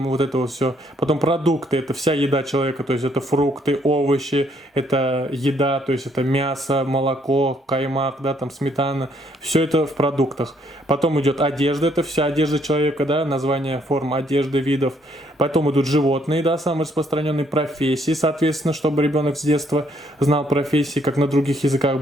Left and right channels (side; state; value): both; normal; correlation 0.69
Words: вот это вот все. Потом продукты, это вся еда человека, то есть это фрукты, овощи, это еда, то есть это мясо, молоко, каймак, да, там сметана, все это в продуктах. Потом идет одежда, это вся одежда человека, да, название форм одежды, видов. Потом идут животные, да, самые распространенные профессии, соответственно, чтобы ребенок с детства знал профессии, как на других языках